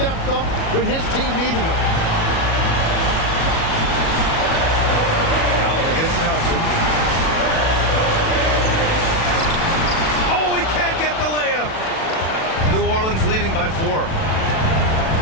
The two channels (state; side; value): late; right; 37 ms